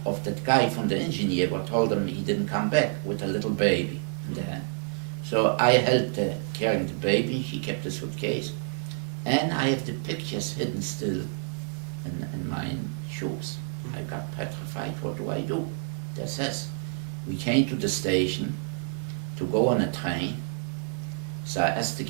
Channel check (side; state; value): left; silent; 59 dB below the other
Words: of that guy from the engineer who told him he didn't come back with a little baby in the hand. So I helped her carrying the baby, she kept the suitcase, and I have the pictures hidden still in my shoes. I got petrified, what do I do? That says, we came to the station to go on a train, so I asked the